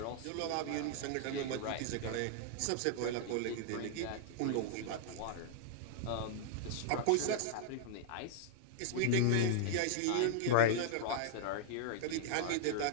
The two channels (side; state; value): both; different; correlation -0.02